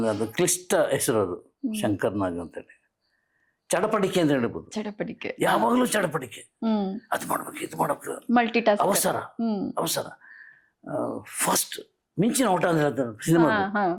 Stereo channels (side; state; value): both; identical; correlation 1.00